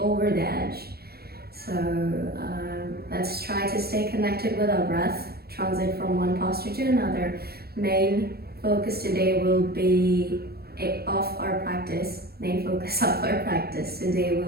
the edge. So let's try to stay connected with our breath, transit from one posture to another. Main focus today will be main focus of our practice today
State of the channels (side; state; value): left; late; 0.46 ms